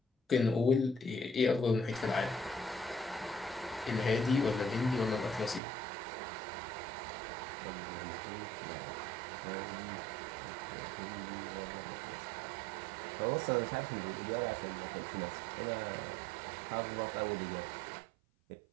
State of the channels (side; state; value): left; drops out; at 5.6 s